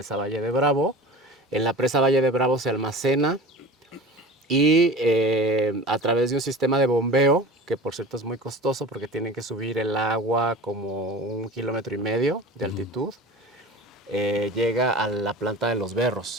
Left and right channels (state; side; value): normal; both; correlation 0.36